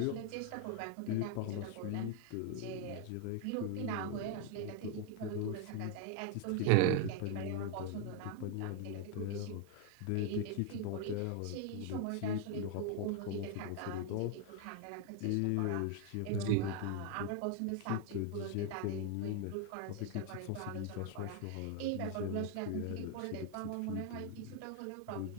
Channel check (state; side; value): different; both; correlation 0.00